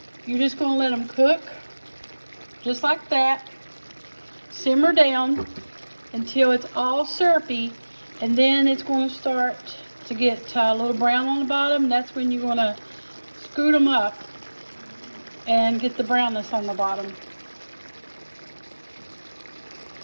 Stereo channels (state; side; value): inverted; both; correlation -1.00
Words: you're just going to let them cook just like that. Simmer down until it's all syrupy, and then it's going to start to get a little brown on the bottom. That's when you're going to scoot them up and get the brownness on the bottom.